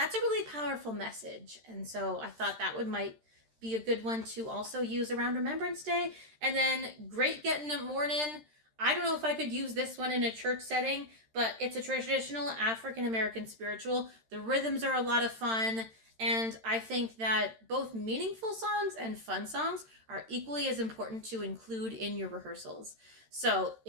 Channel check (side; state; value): left; late; 13 ms